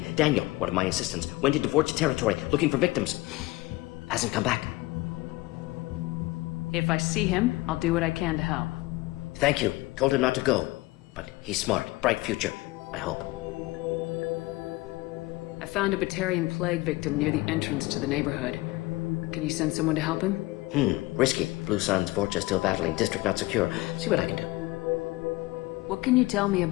Daniel, one of my assistants, went into Vorcha territory looking for victims. Hasn't come back. If I see him, I'll do what I can to help. Thank you. Told him not to go. But he's smart. Bright future. I hope. I found a Batarian plague victim near the entrance to the neighborhood. Can you send someone to help him? Risky. Blue Sun's Vorcha still battling. District not secure. See what I can do. What can you tell me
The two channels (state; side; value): quieter; right; 20.6 dB